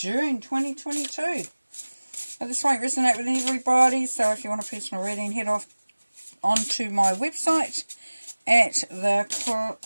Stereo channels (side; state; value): both; inverted; correlation -1.00